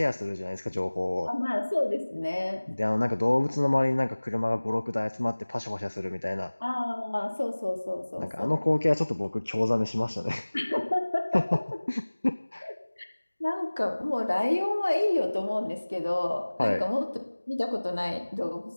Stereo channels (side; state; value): both; inverted; correlation -1.00